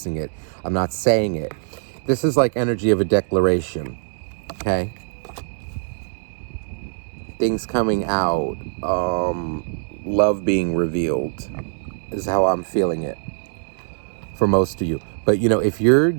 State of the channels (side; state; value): left; silent; 64 dB below the other